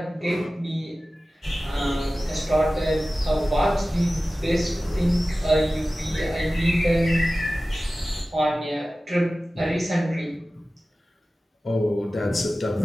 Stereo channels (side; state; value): both; normal; correlation 0.96